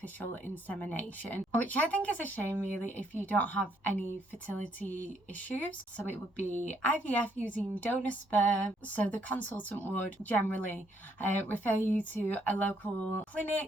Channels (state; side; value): normal; both; correlation 0.71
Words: insemination, which I think is a shame really if you don't have any fertility issues. So it would be IVF using donor sperm. So the consultant would generally refer you to a local